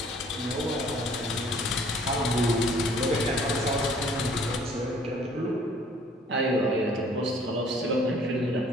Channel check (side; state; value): both; normal; correlation 0.56